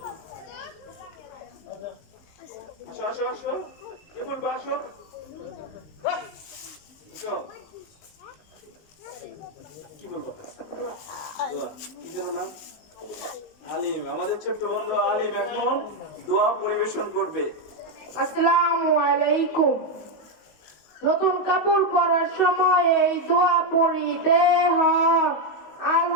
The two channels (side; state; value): right; late; 19 ms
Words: আসো আসো আসো, কে বলবো? আসো, আসো। কি বলবো? দোয়া। কি যেন নাম? আলিম। আমাদের ছোট্ট বন্ধু আলিম এখন দোয়া পরিবেশন করবে। আসসালামু আলাইকুম। নতুন কাপড় পরার সময় এই দোয়া পড়িতে হয়।